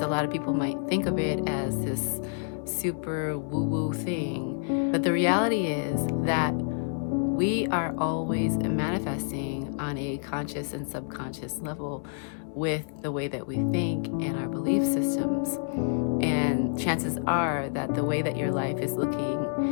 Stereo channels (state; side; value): silent; right; digital silence